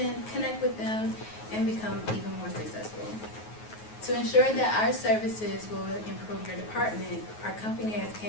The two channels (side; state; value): right; late; 9.4 ms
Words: connect with them, and become even more successful. To ensure that our services will improve your department, our company has